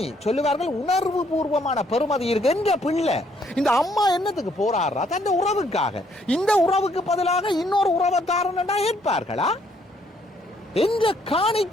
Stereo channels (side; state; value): both; normal; correlation 0.68